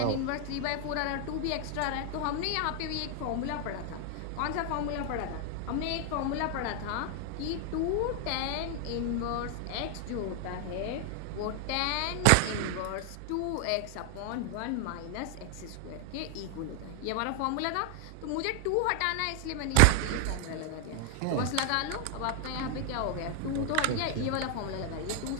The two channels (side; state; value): both; different; correlation 0.00